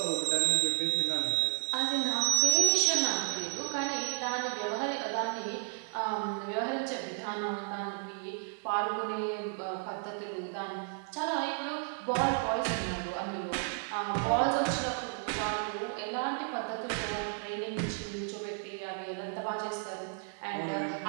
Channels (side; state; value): left; silent; 56 dB below the other